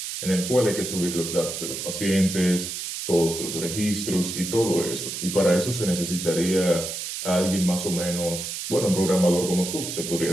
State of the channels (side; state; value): right; noise; hiss, 6 dB below the sound